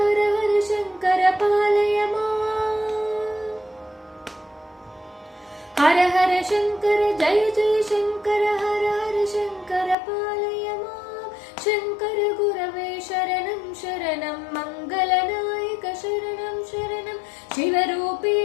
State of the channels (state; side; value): drops out; right; at 10.0 s